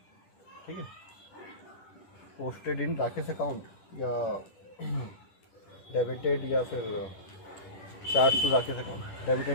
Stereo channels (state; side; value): late; right; 10 ms